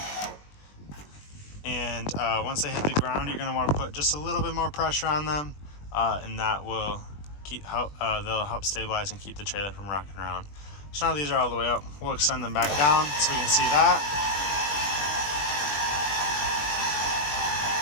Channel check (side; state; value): right; late; 20 ms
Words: and once they hit the ground, you're going to want to put just a little bit more pressure on them, and that will they'll help stabilize and keep the trailer from rocking around. So now these are all the way up. We'll extend them back down so we can see that.